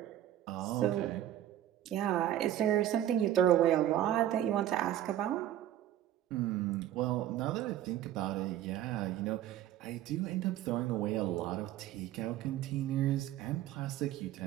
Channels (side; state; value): left; quieter; 12.4 dB